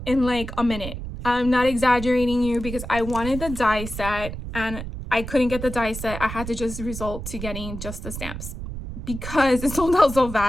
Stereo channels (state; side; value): noise; right; rumble, 8 dB below the sound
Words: in like a minute. I'm not exaggerating you, because I wanted the die set and I couldn't get the die set. I had to just resort to getting just the stamps because it sold out so